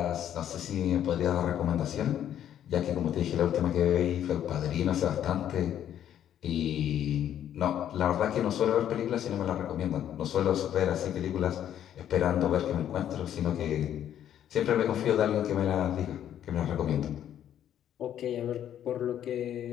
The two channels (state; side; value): quieter; right; 10.5 dB